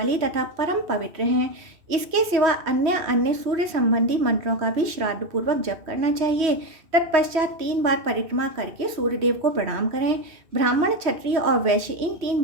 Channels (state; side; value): late; left; 3.1 ms